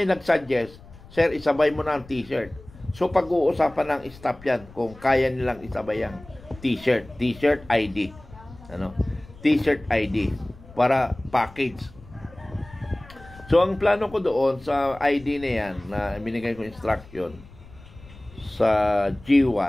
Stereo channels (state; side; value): noise; left; rumble, 21 dB below the sound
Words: nag-suggest, sir, isabay mo na ang t-shirt. So, pag-uusapan ng staff yan kung kaya nilang isabay ang t-shirt. T-shirt ID. T-shirt ID. Para package. So, ang plano ko doon sa ID na yan, na binigay ko instruction sa